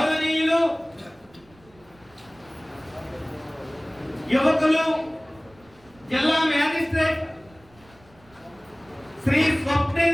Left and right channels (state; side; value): noise; right; rumble, 28 dB below the sound